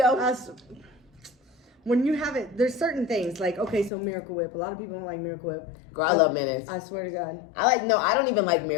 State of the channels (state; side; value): drops out; right; at 3.9 s